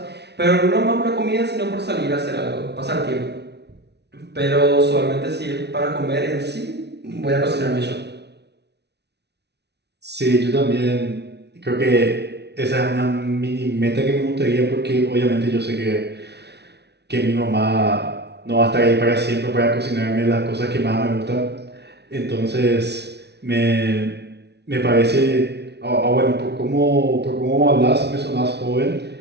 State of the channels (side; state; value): left; late; 0.49 ms